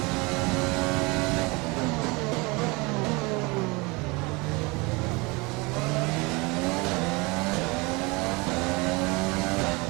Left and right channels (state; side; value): quieter; left; 26.3 dB